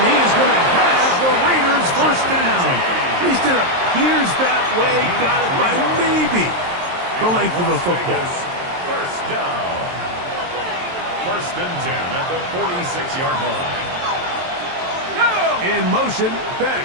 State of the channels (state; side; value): late; left; 23 ms